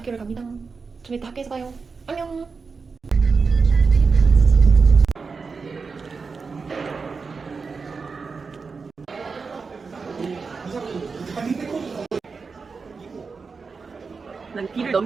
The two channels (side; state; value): left; quieter; 4.8 dB